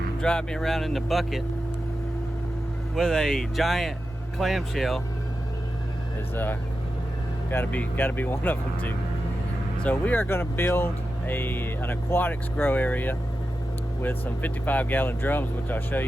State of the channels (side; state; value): both; normal; correlation 0.91